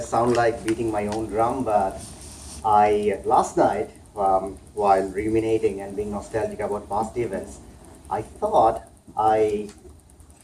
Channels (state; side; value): identical; both; correlation 1.00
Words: sound like beating my own drum, but I last night, while ruminating and being nostalgic about past events, I thought I